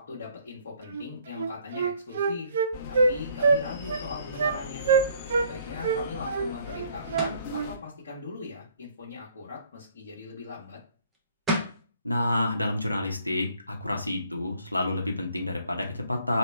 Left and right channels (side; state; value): both; inverted; correlation -0.61